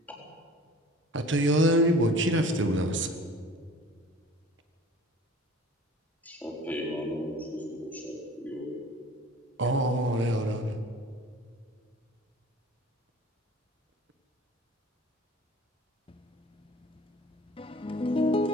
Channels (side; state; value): both; normal; correlation 0.45